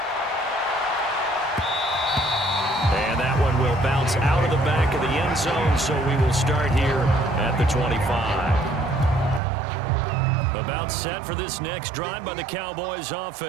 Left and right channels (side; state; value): left; drops out; at 9.4 s